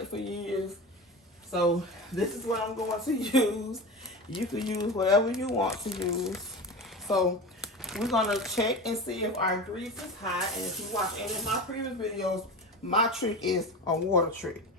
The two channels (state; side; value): normal; both; correlation 0.27